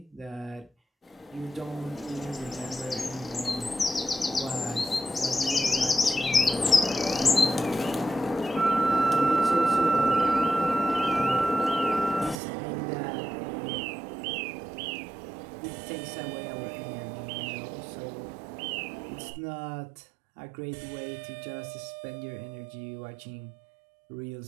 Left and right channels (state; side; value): drops out; left; at 12.4 s